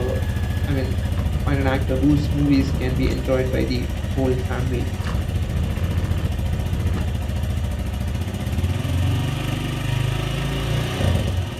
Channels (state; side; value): identical; both; correlation 1.00